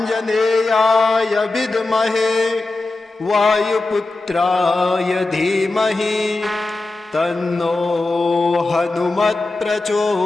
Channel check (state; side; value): quieter; right; 3.2 dB